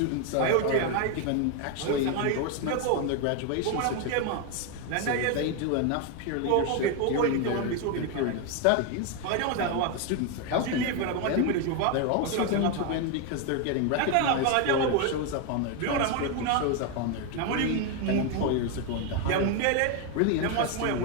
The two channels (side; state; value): both; different; correlation 0.01